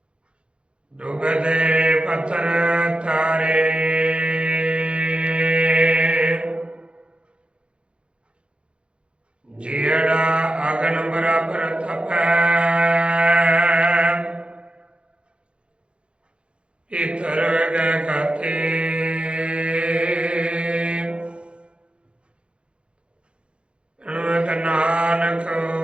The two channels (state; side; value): late; left; 0.057 ms